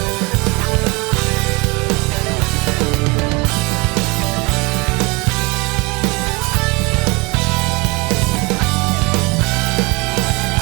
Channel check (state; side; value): quieter; left; 27.0 dB